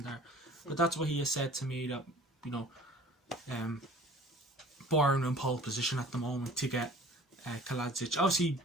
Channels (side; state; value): both; normal; correlation 0.47